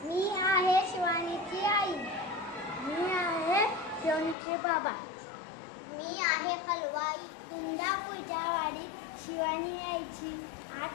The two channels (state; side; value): drops out; right; at 4.4 s